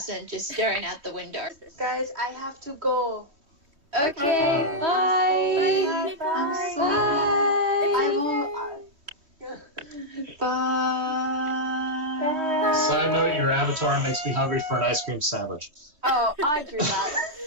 just staring out the window. Guys, I have to go. Okay, bye. Bye. Bye. Side note, your avatar makes me hungry for an ice cream sandwich. Oh, I drew that.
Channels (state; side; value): late; left; 3.2 ms